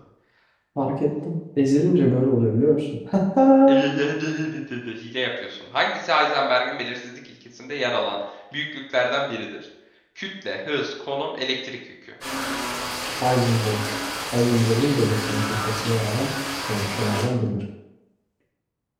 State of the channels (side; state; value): both; identical; correlation 1.00